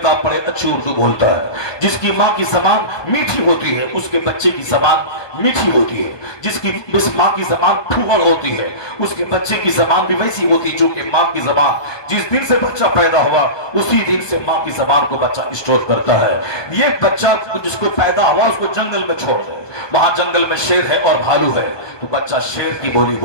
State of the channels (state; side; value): late; right; 1.2 ms